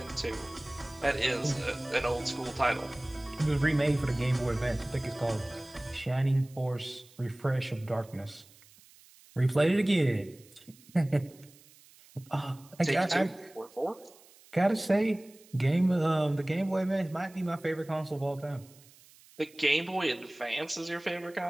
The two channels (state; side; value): noise; right; hiss, 25 dB below the sound